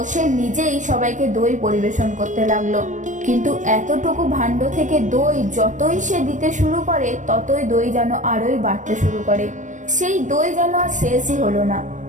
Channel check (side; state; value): left; late; 0.36 ms